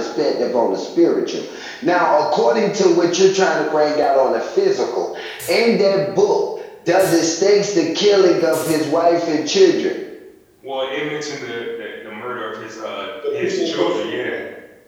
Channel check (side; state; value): both; identical; correlation 1.00